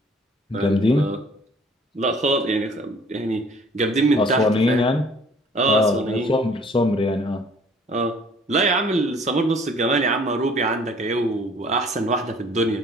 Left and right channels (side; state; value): both; normal; correlation 0.55